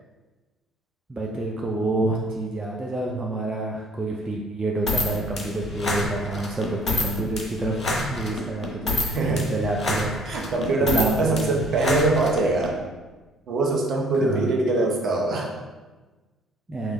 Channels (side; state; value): both; normal; correlation 0.57